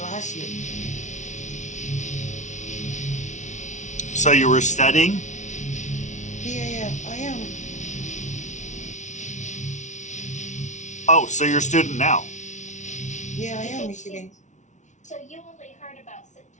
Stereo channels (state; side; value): late; right; 0.35 ms